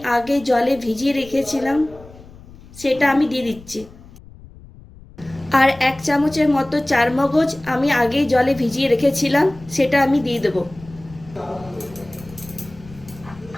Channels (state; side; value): noise; left; rumble, 20 dB below the sound